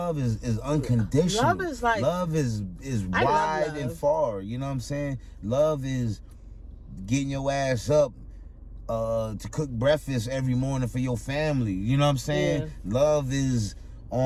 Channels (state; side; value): identical; both; correlation 1.00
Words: is unconditional. Love is like, love is wide and far. You know what I'm saying? Love is getting your ass up to cook breakfast every morning for your family. You know what I'm saying? Yeah. Love is